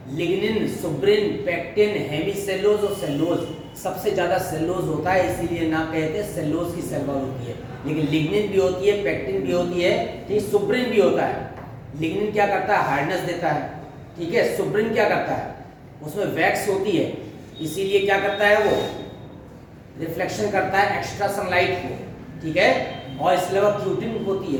लिग्निन, सुब्रिन, पेक्टिन, हेमीसेलुलोज और सेलुलोज। सबसे ज्यादा सेलुलोज होता है, इसीलिए नाम कहते हैं सेलुलोज की सेल वॉल होती है। लेकिन लिग्निन भी होती है, पेक्टिन भी होती है, ठीक, सुब्रिन भी होता है। लिग्निन क्या करता है, हार्डनेस देता है। ठीक है, सुब्रिन क्या करता है, उसमें वैक्स होती है, इसीलिए क्या करता है, वो रिफ्लेक्शन करता है एक्स्ट्रा सनलाइट को। ठीक है, और इसके अलावा क्यूटिन होती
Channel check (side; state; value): both; identical; correlation 1.00